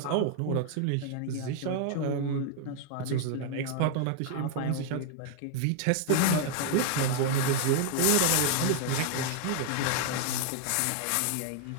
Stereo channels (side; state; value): both; different; correlation 0.00